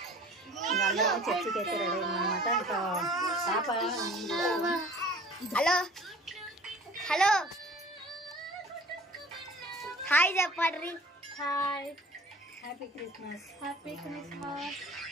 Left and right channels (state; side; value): normal; both; correlation 0.47